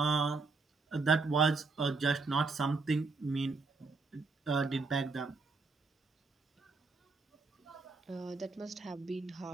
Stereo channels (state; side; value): quieter; left; 4.0 dB